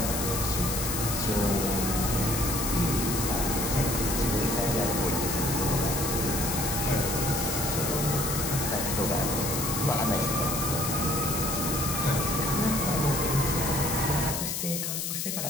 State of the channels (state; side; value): noise; left; hiss, 2 dB below the sound